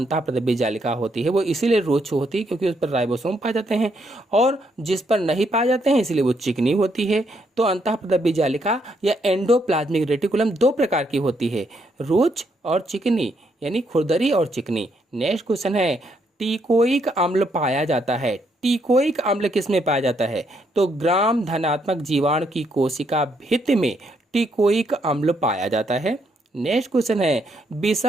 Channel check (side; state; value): both; normal; correlation 0.74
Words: जालिका होती है वो इसीलिए रुक्ष होती है क्योंकि उस पर राइबोसोम पाए जाते हैं, और जिस पर नहीं पाए जाते हैं इसलिए वो चिकनी होती है। तो अंतःप्रद्रव्य जालिका या एंडोप्लाज्मिक रेटिकुलम दो प्रकार की होती है, रुक्ष और चिकनी, यानी खुरदरी और चिकनी। नेक्स्ट क्वेश्चन है, टिकोइक अम्ल पाया जाता है। टिकोइक अम्ल किस में पाया जाता है? तो ग्राम धनात्मक जीवाणु की कोशिका भित्ति में टिकोइक अम्ल पाया जाता है। नेक्स्ट क्वेश्चन है,